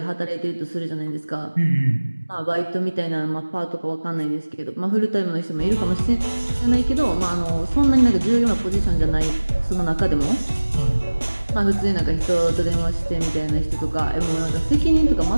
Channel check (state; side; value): inverted; both; correlation -1.00